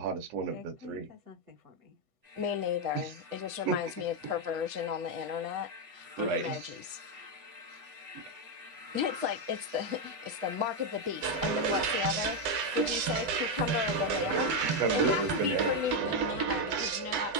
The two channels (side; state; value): left; late; 8.1 ms